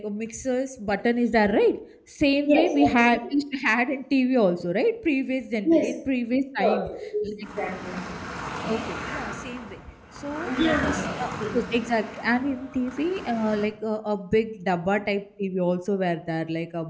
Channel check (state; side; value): identical; both; correlation 1.00